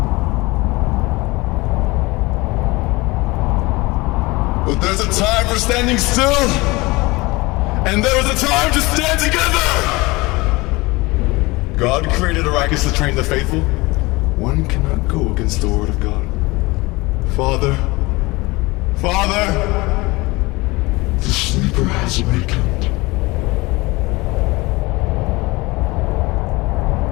But there's a time for standing still, and there is a time to stand together! God created Arrakis to train the faithful. One cannot go against the word of God. Father, The sleeper has awakened.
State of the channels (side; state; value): right; quieter; 22.8 dB